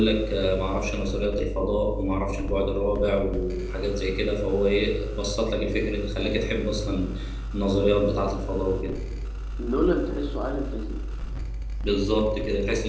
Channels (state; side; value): identical; both; correlation 1.00